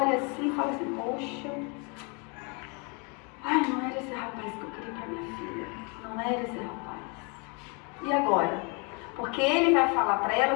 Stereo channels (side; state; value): right; quieter; 33.3 dB